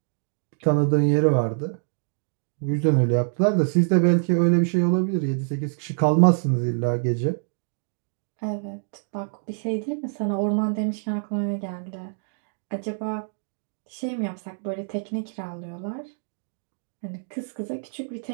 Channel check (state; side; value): silent; left; digital silence